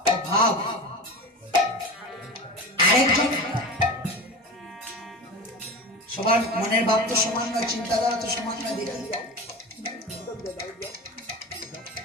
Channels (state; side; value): normal; both; correlation 0.29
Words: ভাব। আরেকজন সবার মনের ভাব তো সমান নয়, চিন্তাধারা তো সমান নয়। দেখি